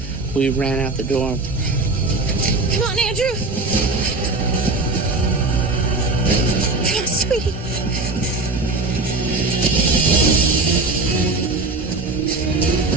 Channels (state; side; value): quieter; left; 3.3 dB